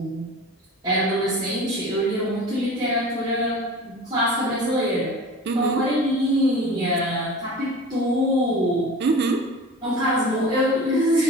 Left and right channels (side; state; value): both; normal; correlation 0.37